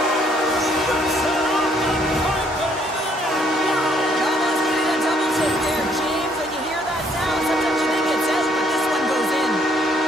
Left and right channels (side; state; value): both; normal; correlation 0.67